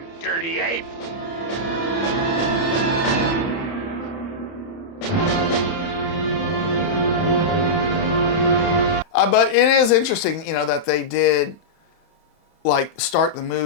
dirty ape! But it is interesting, that they did like start the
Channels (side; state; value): right; late; 30 ms